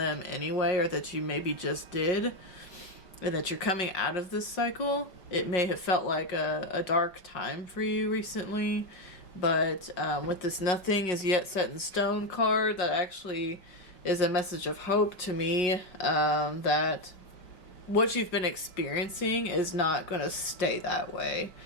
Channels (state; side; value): late; right; 5.4 ms